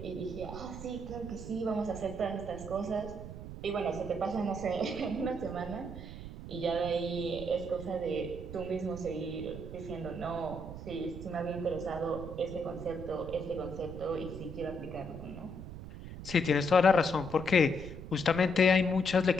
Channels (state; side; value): noise; right; rumble, 10 dB below the sound